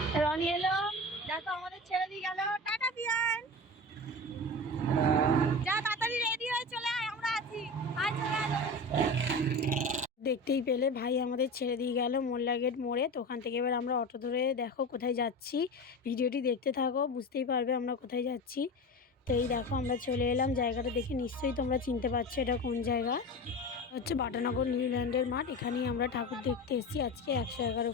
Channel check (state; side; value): normal; both; correlation 0.28